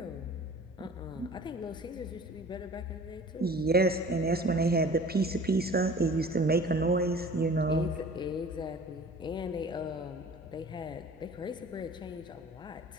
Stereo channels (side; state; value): both; normal; correlation 0.45